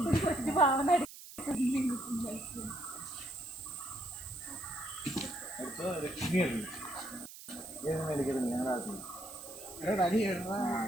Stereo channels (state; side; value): noise; right; hiss, 15 dB below the sound